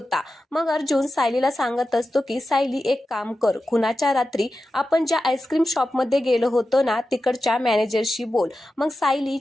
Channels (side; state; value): both; normal; correlation 0.92